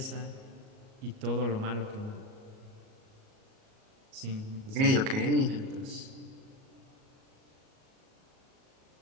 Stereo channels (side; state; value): left; late; 38 ms